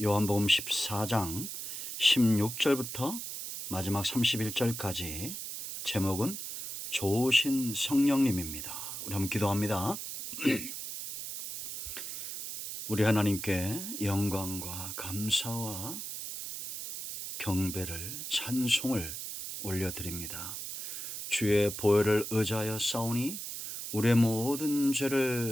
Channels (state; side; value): noise; right; hiss, 7 dB below the sound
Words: 요한복음 14장 16절부터 마지막 31절까지. 제목은 좋으신 성령님입니다. 우리 한번 기도합니다. 우리 하나님께 영광과 감사와 경배를, 찬송을 올려드립니다. 주의 보혈을 의지하여 싸우니 우리의 모든